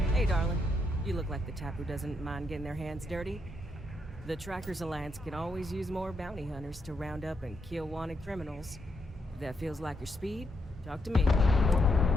Hey, darling. You look like the type who doesn't mind getting their hands dirty. The Trackers Alliance can always use more bounty hunters to round up and kill wanted criminals. If that feels like your speed, talk to me.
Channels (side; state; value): both; normal; correlation 0.79